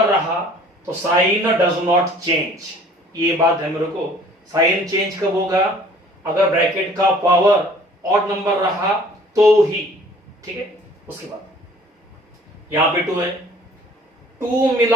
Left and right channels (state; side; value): normal; both; correlation 0.52